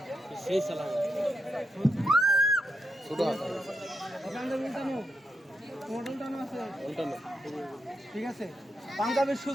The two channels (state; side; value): normal; both; correlation 0.83